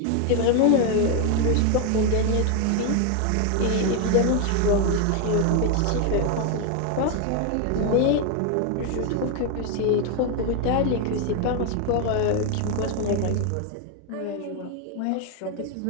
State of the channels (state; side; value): different; both; correlation 0.01